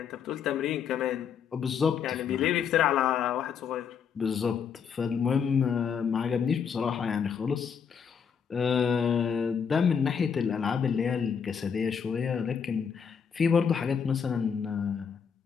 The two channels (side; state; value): right; quieter; 7.0 dB